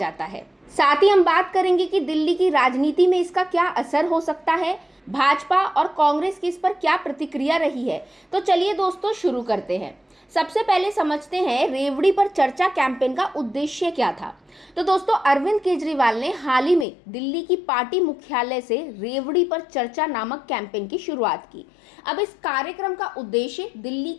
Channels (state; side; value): drops out; right; at 16.9 s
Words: है। साथ ही हम बात करेंगे कि दिल्ली की राजनीति में इसका क्या असर हो सकता है, भाजपा और कांग्रेस की इस पर क्या प्रतिक्रिया रही है। तो चलिए दोस्तों, शुरू करते हैं। सबसे पहले समझते हैं रेवड़ी पर चर्चा कैंपेन का उद्देश्य क्या था। तो दोस्तों, अरविंद केजरीवाल ने हाल ही में दिल्ली की पार्टी मुख्यालय से रेवड़ी पर चर्चा नामक कैंपेन की शुरुआत की। अब इस कार्यक्रम का उद्देश्य दिल्ली